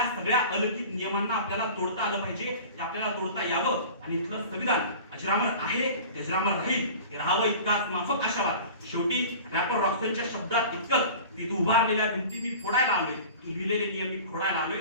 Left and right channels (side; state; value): both; inverted; correlation -0.39